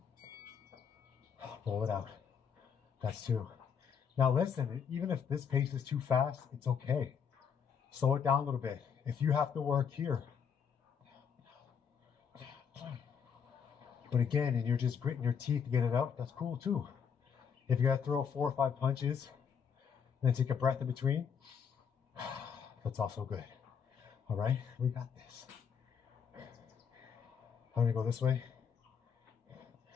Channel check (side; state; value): right; quieter; 7.1 dB